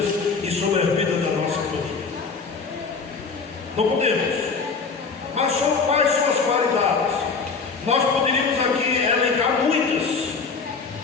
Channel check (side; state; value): right; quieter; 4.9 dB